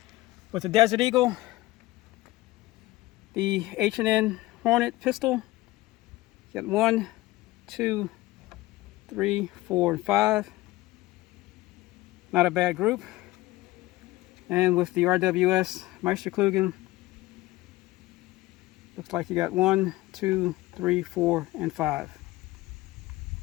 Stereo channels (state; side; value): quieter; right; 18.5 dB